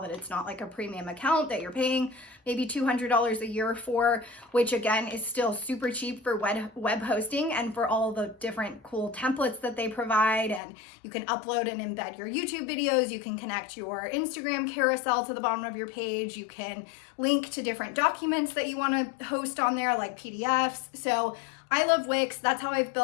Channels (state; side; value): drops out; right; at 10.6 s